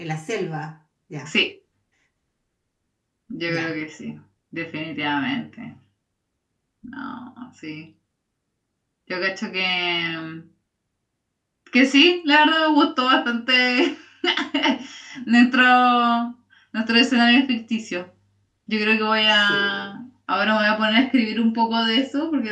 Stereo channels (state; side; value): identical; both; correlation 1.00